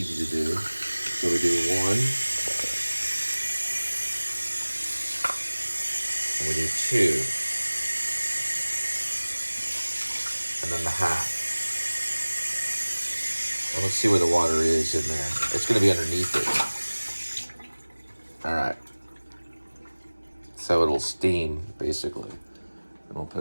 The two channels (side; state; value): both; inverted; correlation -1.00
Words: to do. So we do 1. And we do 2. And then the half. And let's see where the water is in there. It's going to be underneath it. Alright. So it'll steam, basically. And we'll put